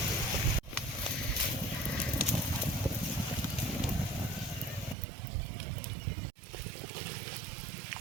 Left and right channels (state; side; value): drops out; left; at 5.0 s